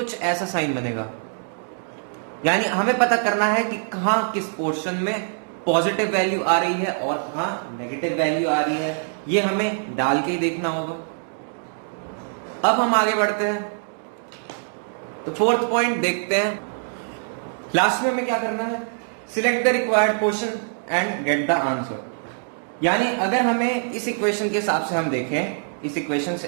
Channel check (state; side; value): silent; left; digital silence